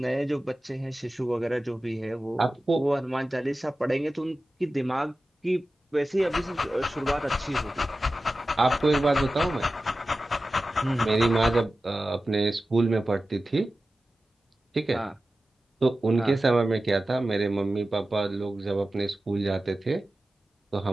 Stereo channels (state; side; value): normal; both; correlation 0.95